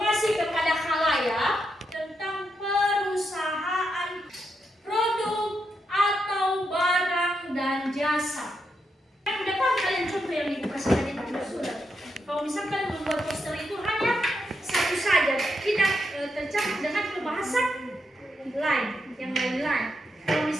kepada khalayak tentang perusahaan, produk atau barang dan jasa. Yang dapat kalian contoh yang Ibu kasih tadi pada surat. Kalau misalkan membuat poster itu hanya satu saja, tidak tercakup dengan pembahasan lain, yang lain-lain. Kalau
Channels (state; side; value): normal; both; correlation 0.82